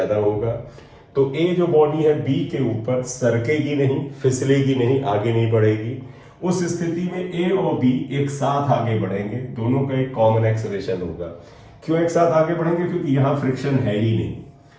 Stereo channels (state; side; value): identical; both; correlation 1.00